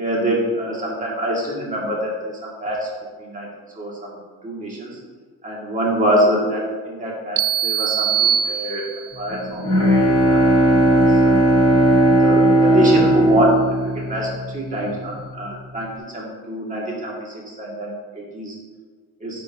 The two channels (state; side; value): normal; both; correlation 0.52